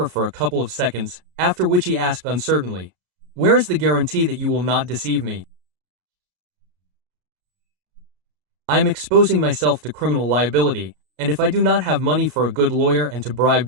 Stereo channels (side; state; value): left; late; 33 ms